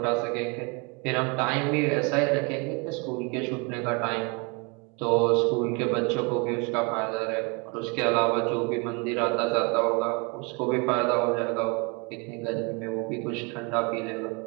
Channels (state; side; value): quieter; left; 31.5 dB